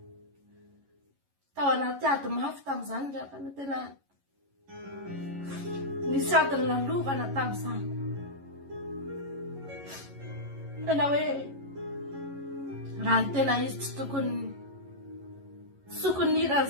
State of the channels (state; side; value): late; left; 11 ms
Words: Tao anaty ady mafy tamin'izany ry havana, tena nisy adiny nalovana tamin'izany. Tena hoe raha ny tena izy tsy tokony